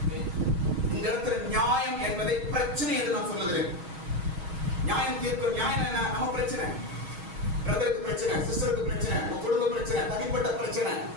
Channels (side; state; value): left; late; 6.3 ms